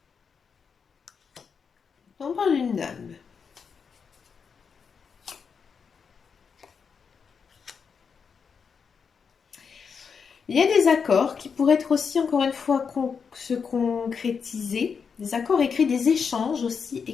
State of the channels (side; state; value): right; quieter; 6.1 dB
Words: On parle d'une dame. Il y a des accords qui pourraient être aussi, encore une fois, se concrétiser. Des accords écrits, des échanges aussi